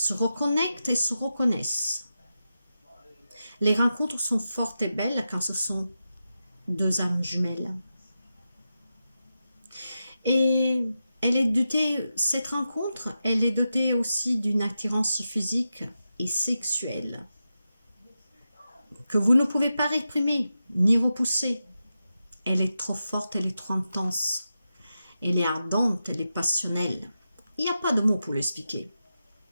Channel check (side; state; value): both; inverted; correlation -0.90